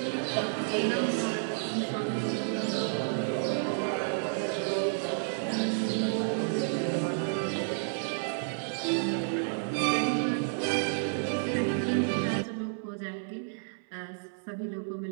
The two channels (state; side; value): silent; left; 57 dB below the other